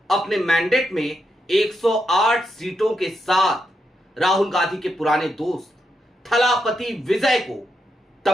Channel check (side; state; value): both; normal; correlation 0.83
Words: अपने मैंडेट में 108 सीटों के साथ राहुल गांधी के पुराने दोस्त थलापति विजय को